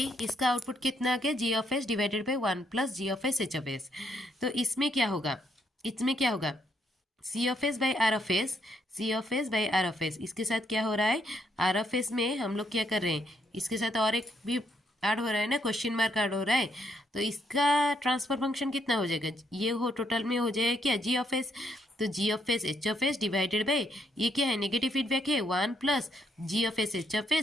इसका आउटपुट कितना आ गया, G of S divided by one plus G of S H of S. तो इसमें क्या होगा, C of S by R of S, C of S by R of S, इसके साथ क्या हो रहा है, आर ऑफ एस में हम लोग क्या कर रहे हैं, इसके साथ और एक भी ऐड हो रहा है ना, क्वेश्चन मार्क ऐड हो रहा है। तो इसका ट्रांसफर फंक्शन कितना हो जाएगा, ये हो टोटल में हो जाएगा क्या, जी ऑफ एस, तो G of S H of S divided by, ये क्या है, नेगेटिव फीडबैक है, one plus G of S H of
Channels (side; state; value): both; normal; correlation 0.74